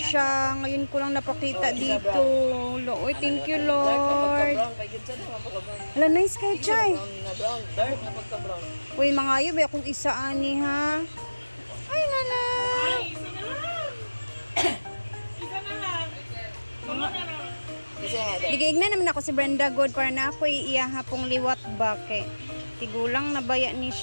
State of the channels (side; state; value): both; inverted; correlation -1.00